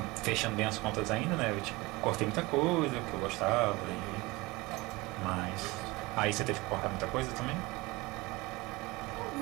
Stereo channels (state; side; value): quieter; left; 22.6 dB